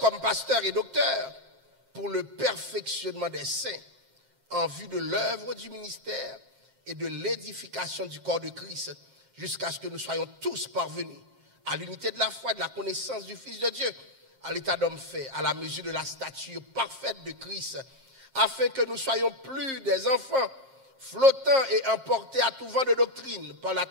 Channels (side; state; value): left; late; 7.5 ms